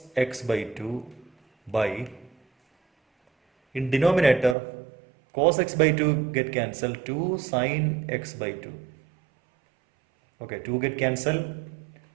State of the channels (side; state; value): left; drops out; at 4.5 s